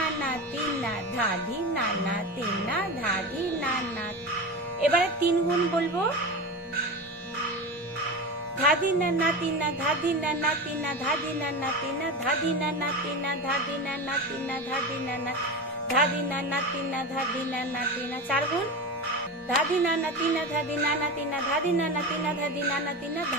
তিনা, ধাধি নানা তিনা, ধাধি নানা। এবারে 3 গুণ বলবো, ধাদি নানা তিনা, ধাদি নানা তিনা, ধাদি নানা তিনা, ধাদি নানা তিনা, ধাদি নানা তিনা, ধাদি নানা, ধাদি নানা তিনা, ধাদি নানা তিনা। 4 গুণ, ধাদি নানা তিনা ধাদি নানা তিনা ধাদি নানা তিনা ধাদি নানা তিনা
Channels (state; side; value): normal; both; correlation 0.25